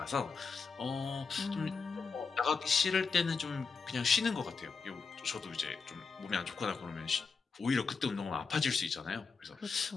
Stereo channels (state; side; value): quieter; right; 5.0 dB